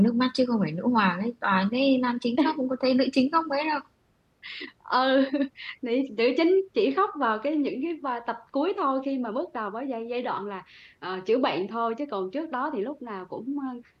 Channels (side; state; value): both; identical; correlation 1.00